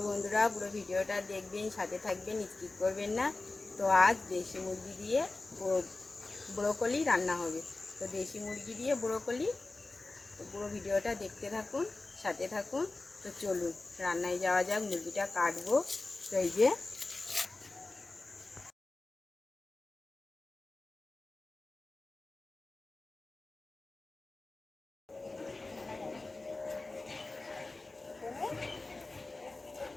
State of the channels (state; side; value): quieter; right; 3.3 dB